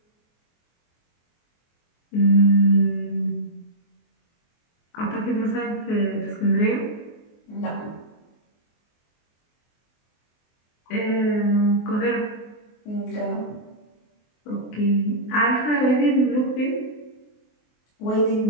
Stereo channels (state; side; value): late; right; 24 ms